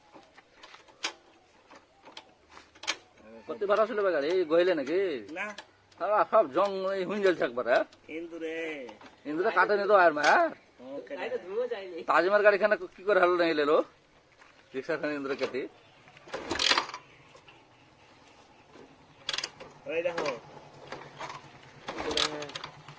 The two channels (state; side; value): identical; both; correlation 1.00